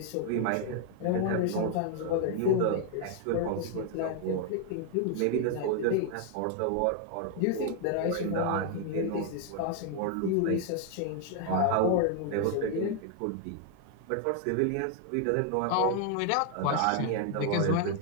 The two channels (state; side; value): different; both; correlation 0.00